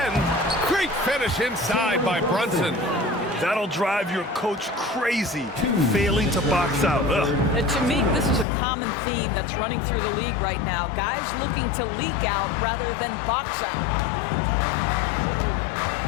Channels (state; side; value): drops out; right; at 8.5 s